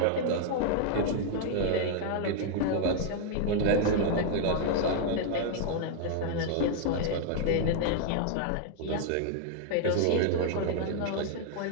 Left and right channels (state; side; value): different; both; correlation 0.00